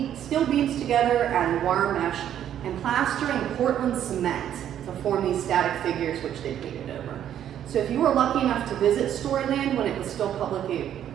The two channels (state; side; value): quieter; left; 10.4 dB